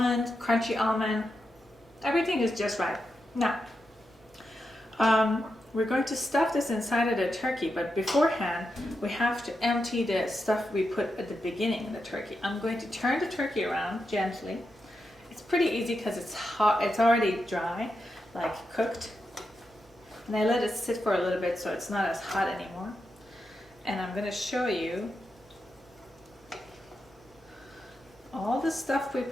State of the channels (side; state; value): both; normal; correlation 0.87